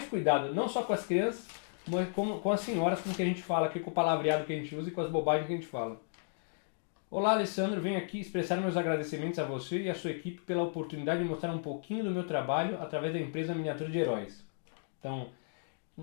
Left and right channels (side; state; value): right; silent; digital silence